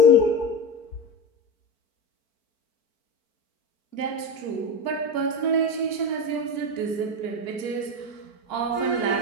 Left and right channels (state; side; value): late; right; 4.5 ms